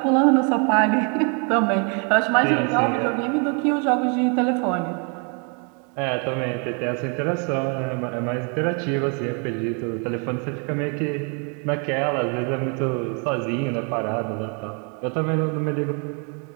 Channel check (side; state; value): left; quieter; 37.4 dB